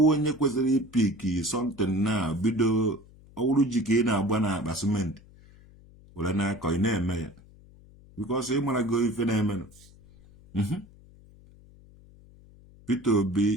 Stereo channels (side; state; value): left; noise; hum, 24 dB below the sound